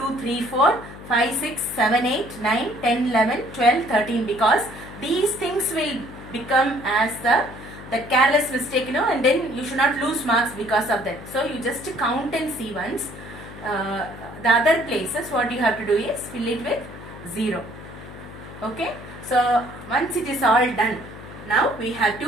3 4 5 6 7 8 9 10 11 12 13, because these things will become as the careless mistake, and then you should not lose marks because of that. So you just count and see once. The other places what you have to do is fill it with 0. Okay, so once it is all done, now we have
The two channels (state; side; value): noise; left; hum, 15 dB below the sound